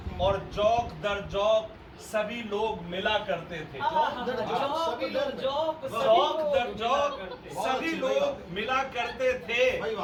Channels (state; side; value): identical; both; correlation 1.00